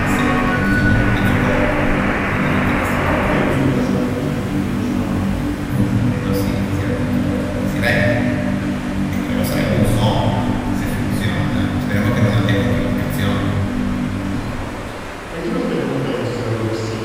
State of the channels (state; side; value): identical; both; correlation 1.00